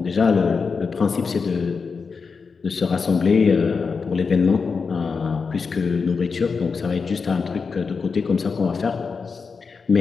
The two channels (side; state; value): right; quieter; 5.1 dB